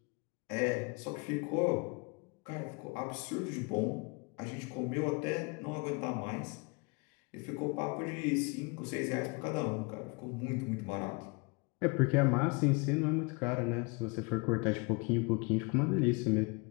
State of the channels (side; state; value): right; quieter; 30.4 dB